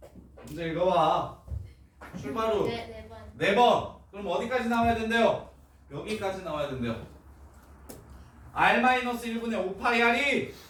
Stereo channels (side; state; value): both; identical; correlation 1.00